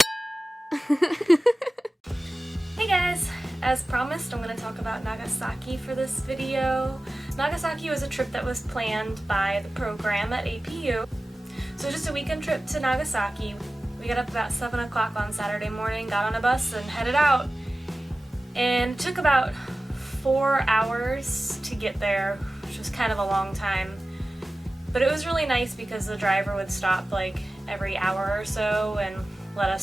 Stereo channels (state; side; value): normal; both; correlation 0.96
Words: guys! As promised, I'm going to talk about Nagasaki for this video. Nagasaki was a trip that was planned by the program at APU. So just a weekend trip to Nagasaki. We got up about 7 o'clock on Saturday morning, got on a bus and headed out. And it took about 4 hours to get there, which was kind of a long time. But it was really nice because the driver would stop like every hour or so and let